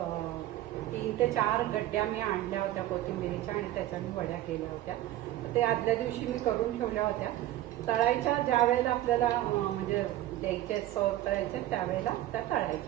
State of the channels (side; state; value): left; quieter; 14.3 dB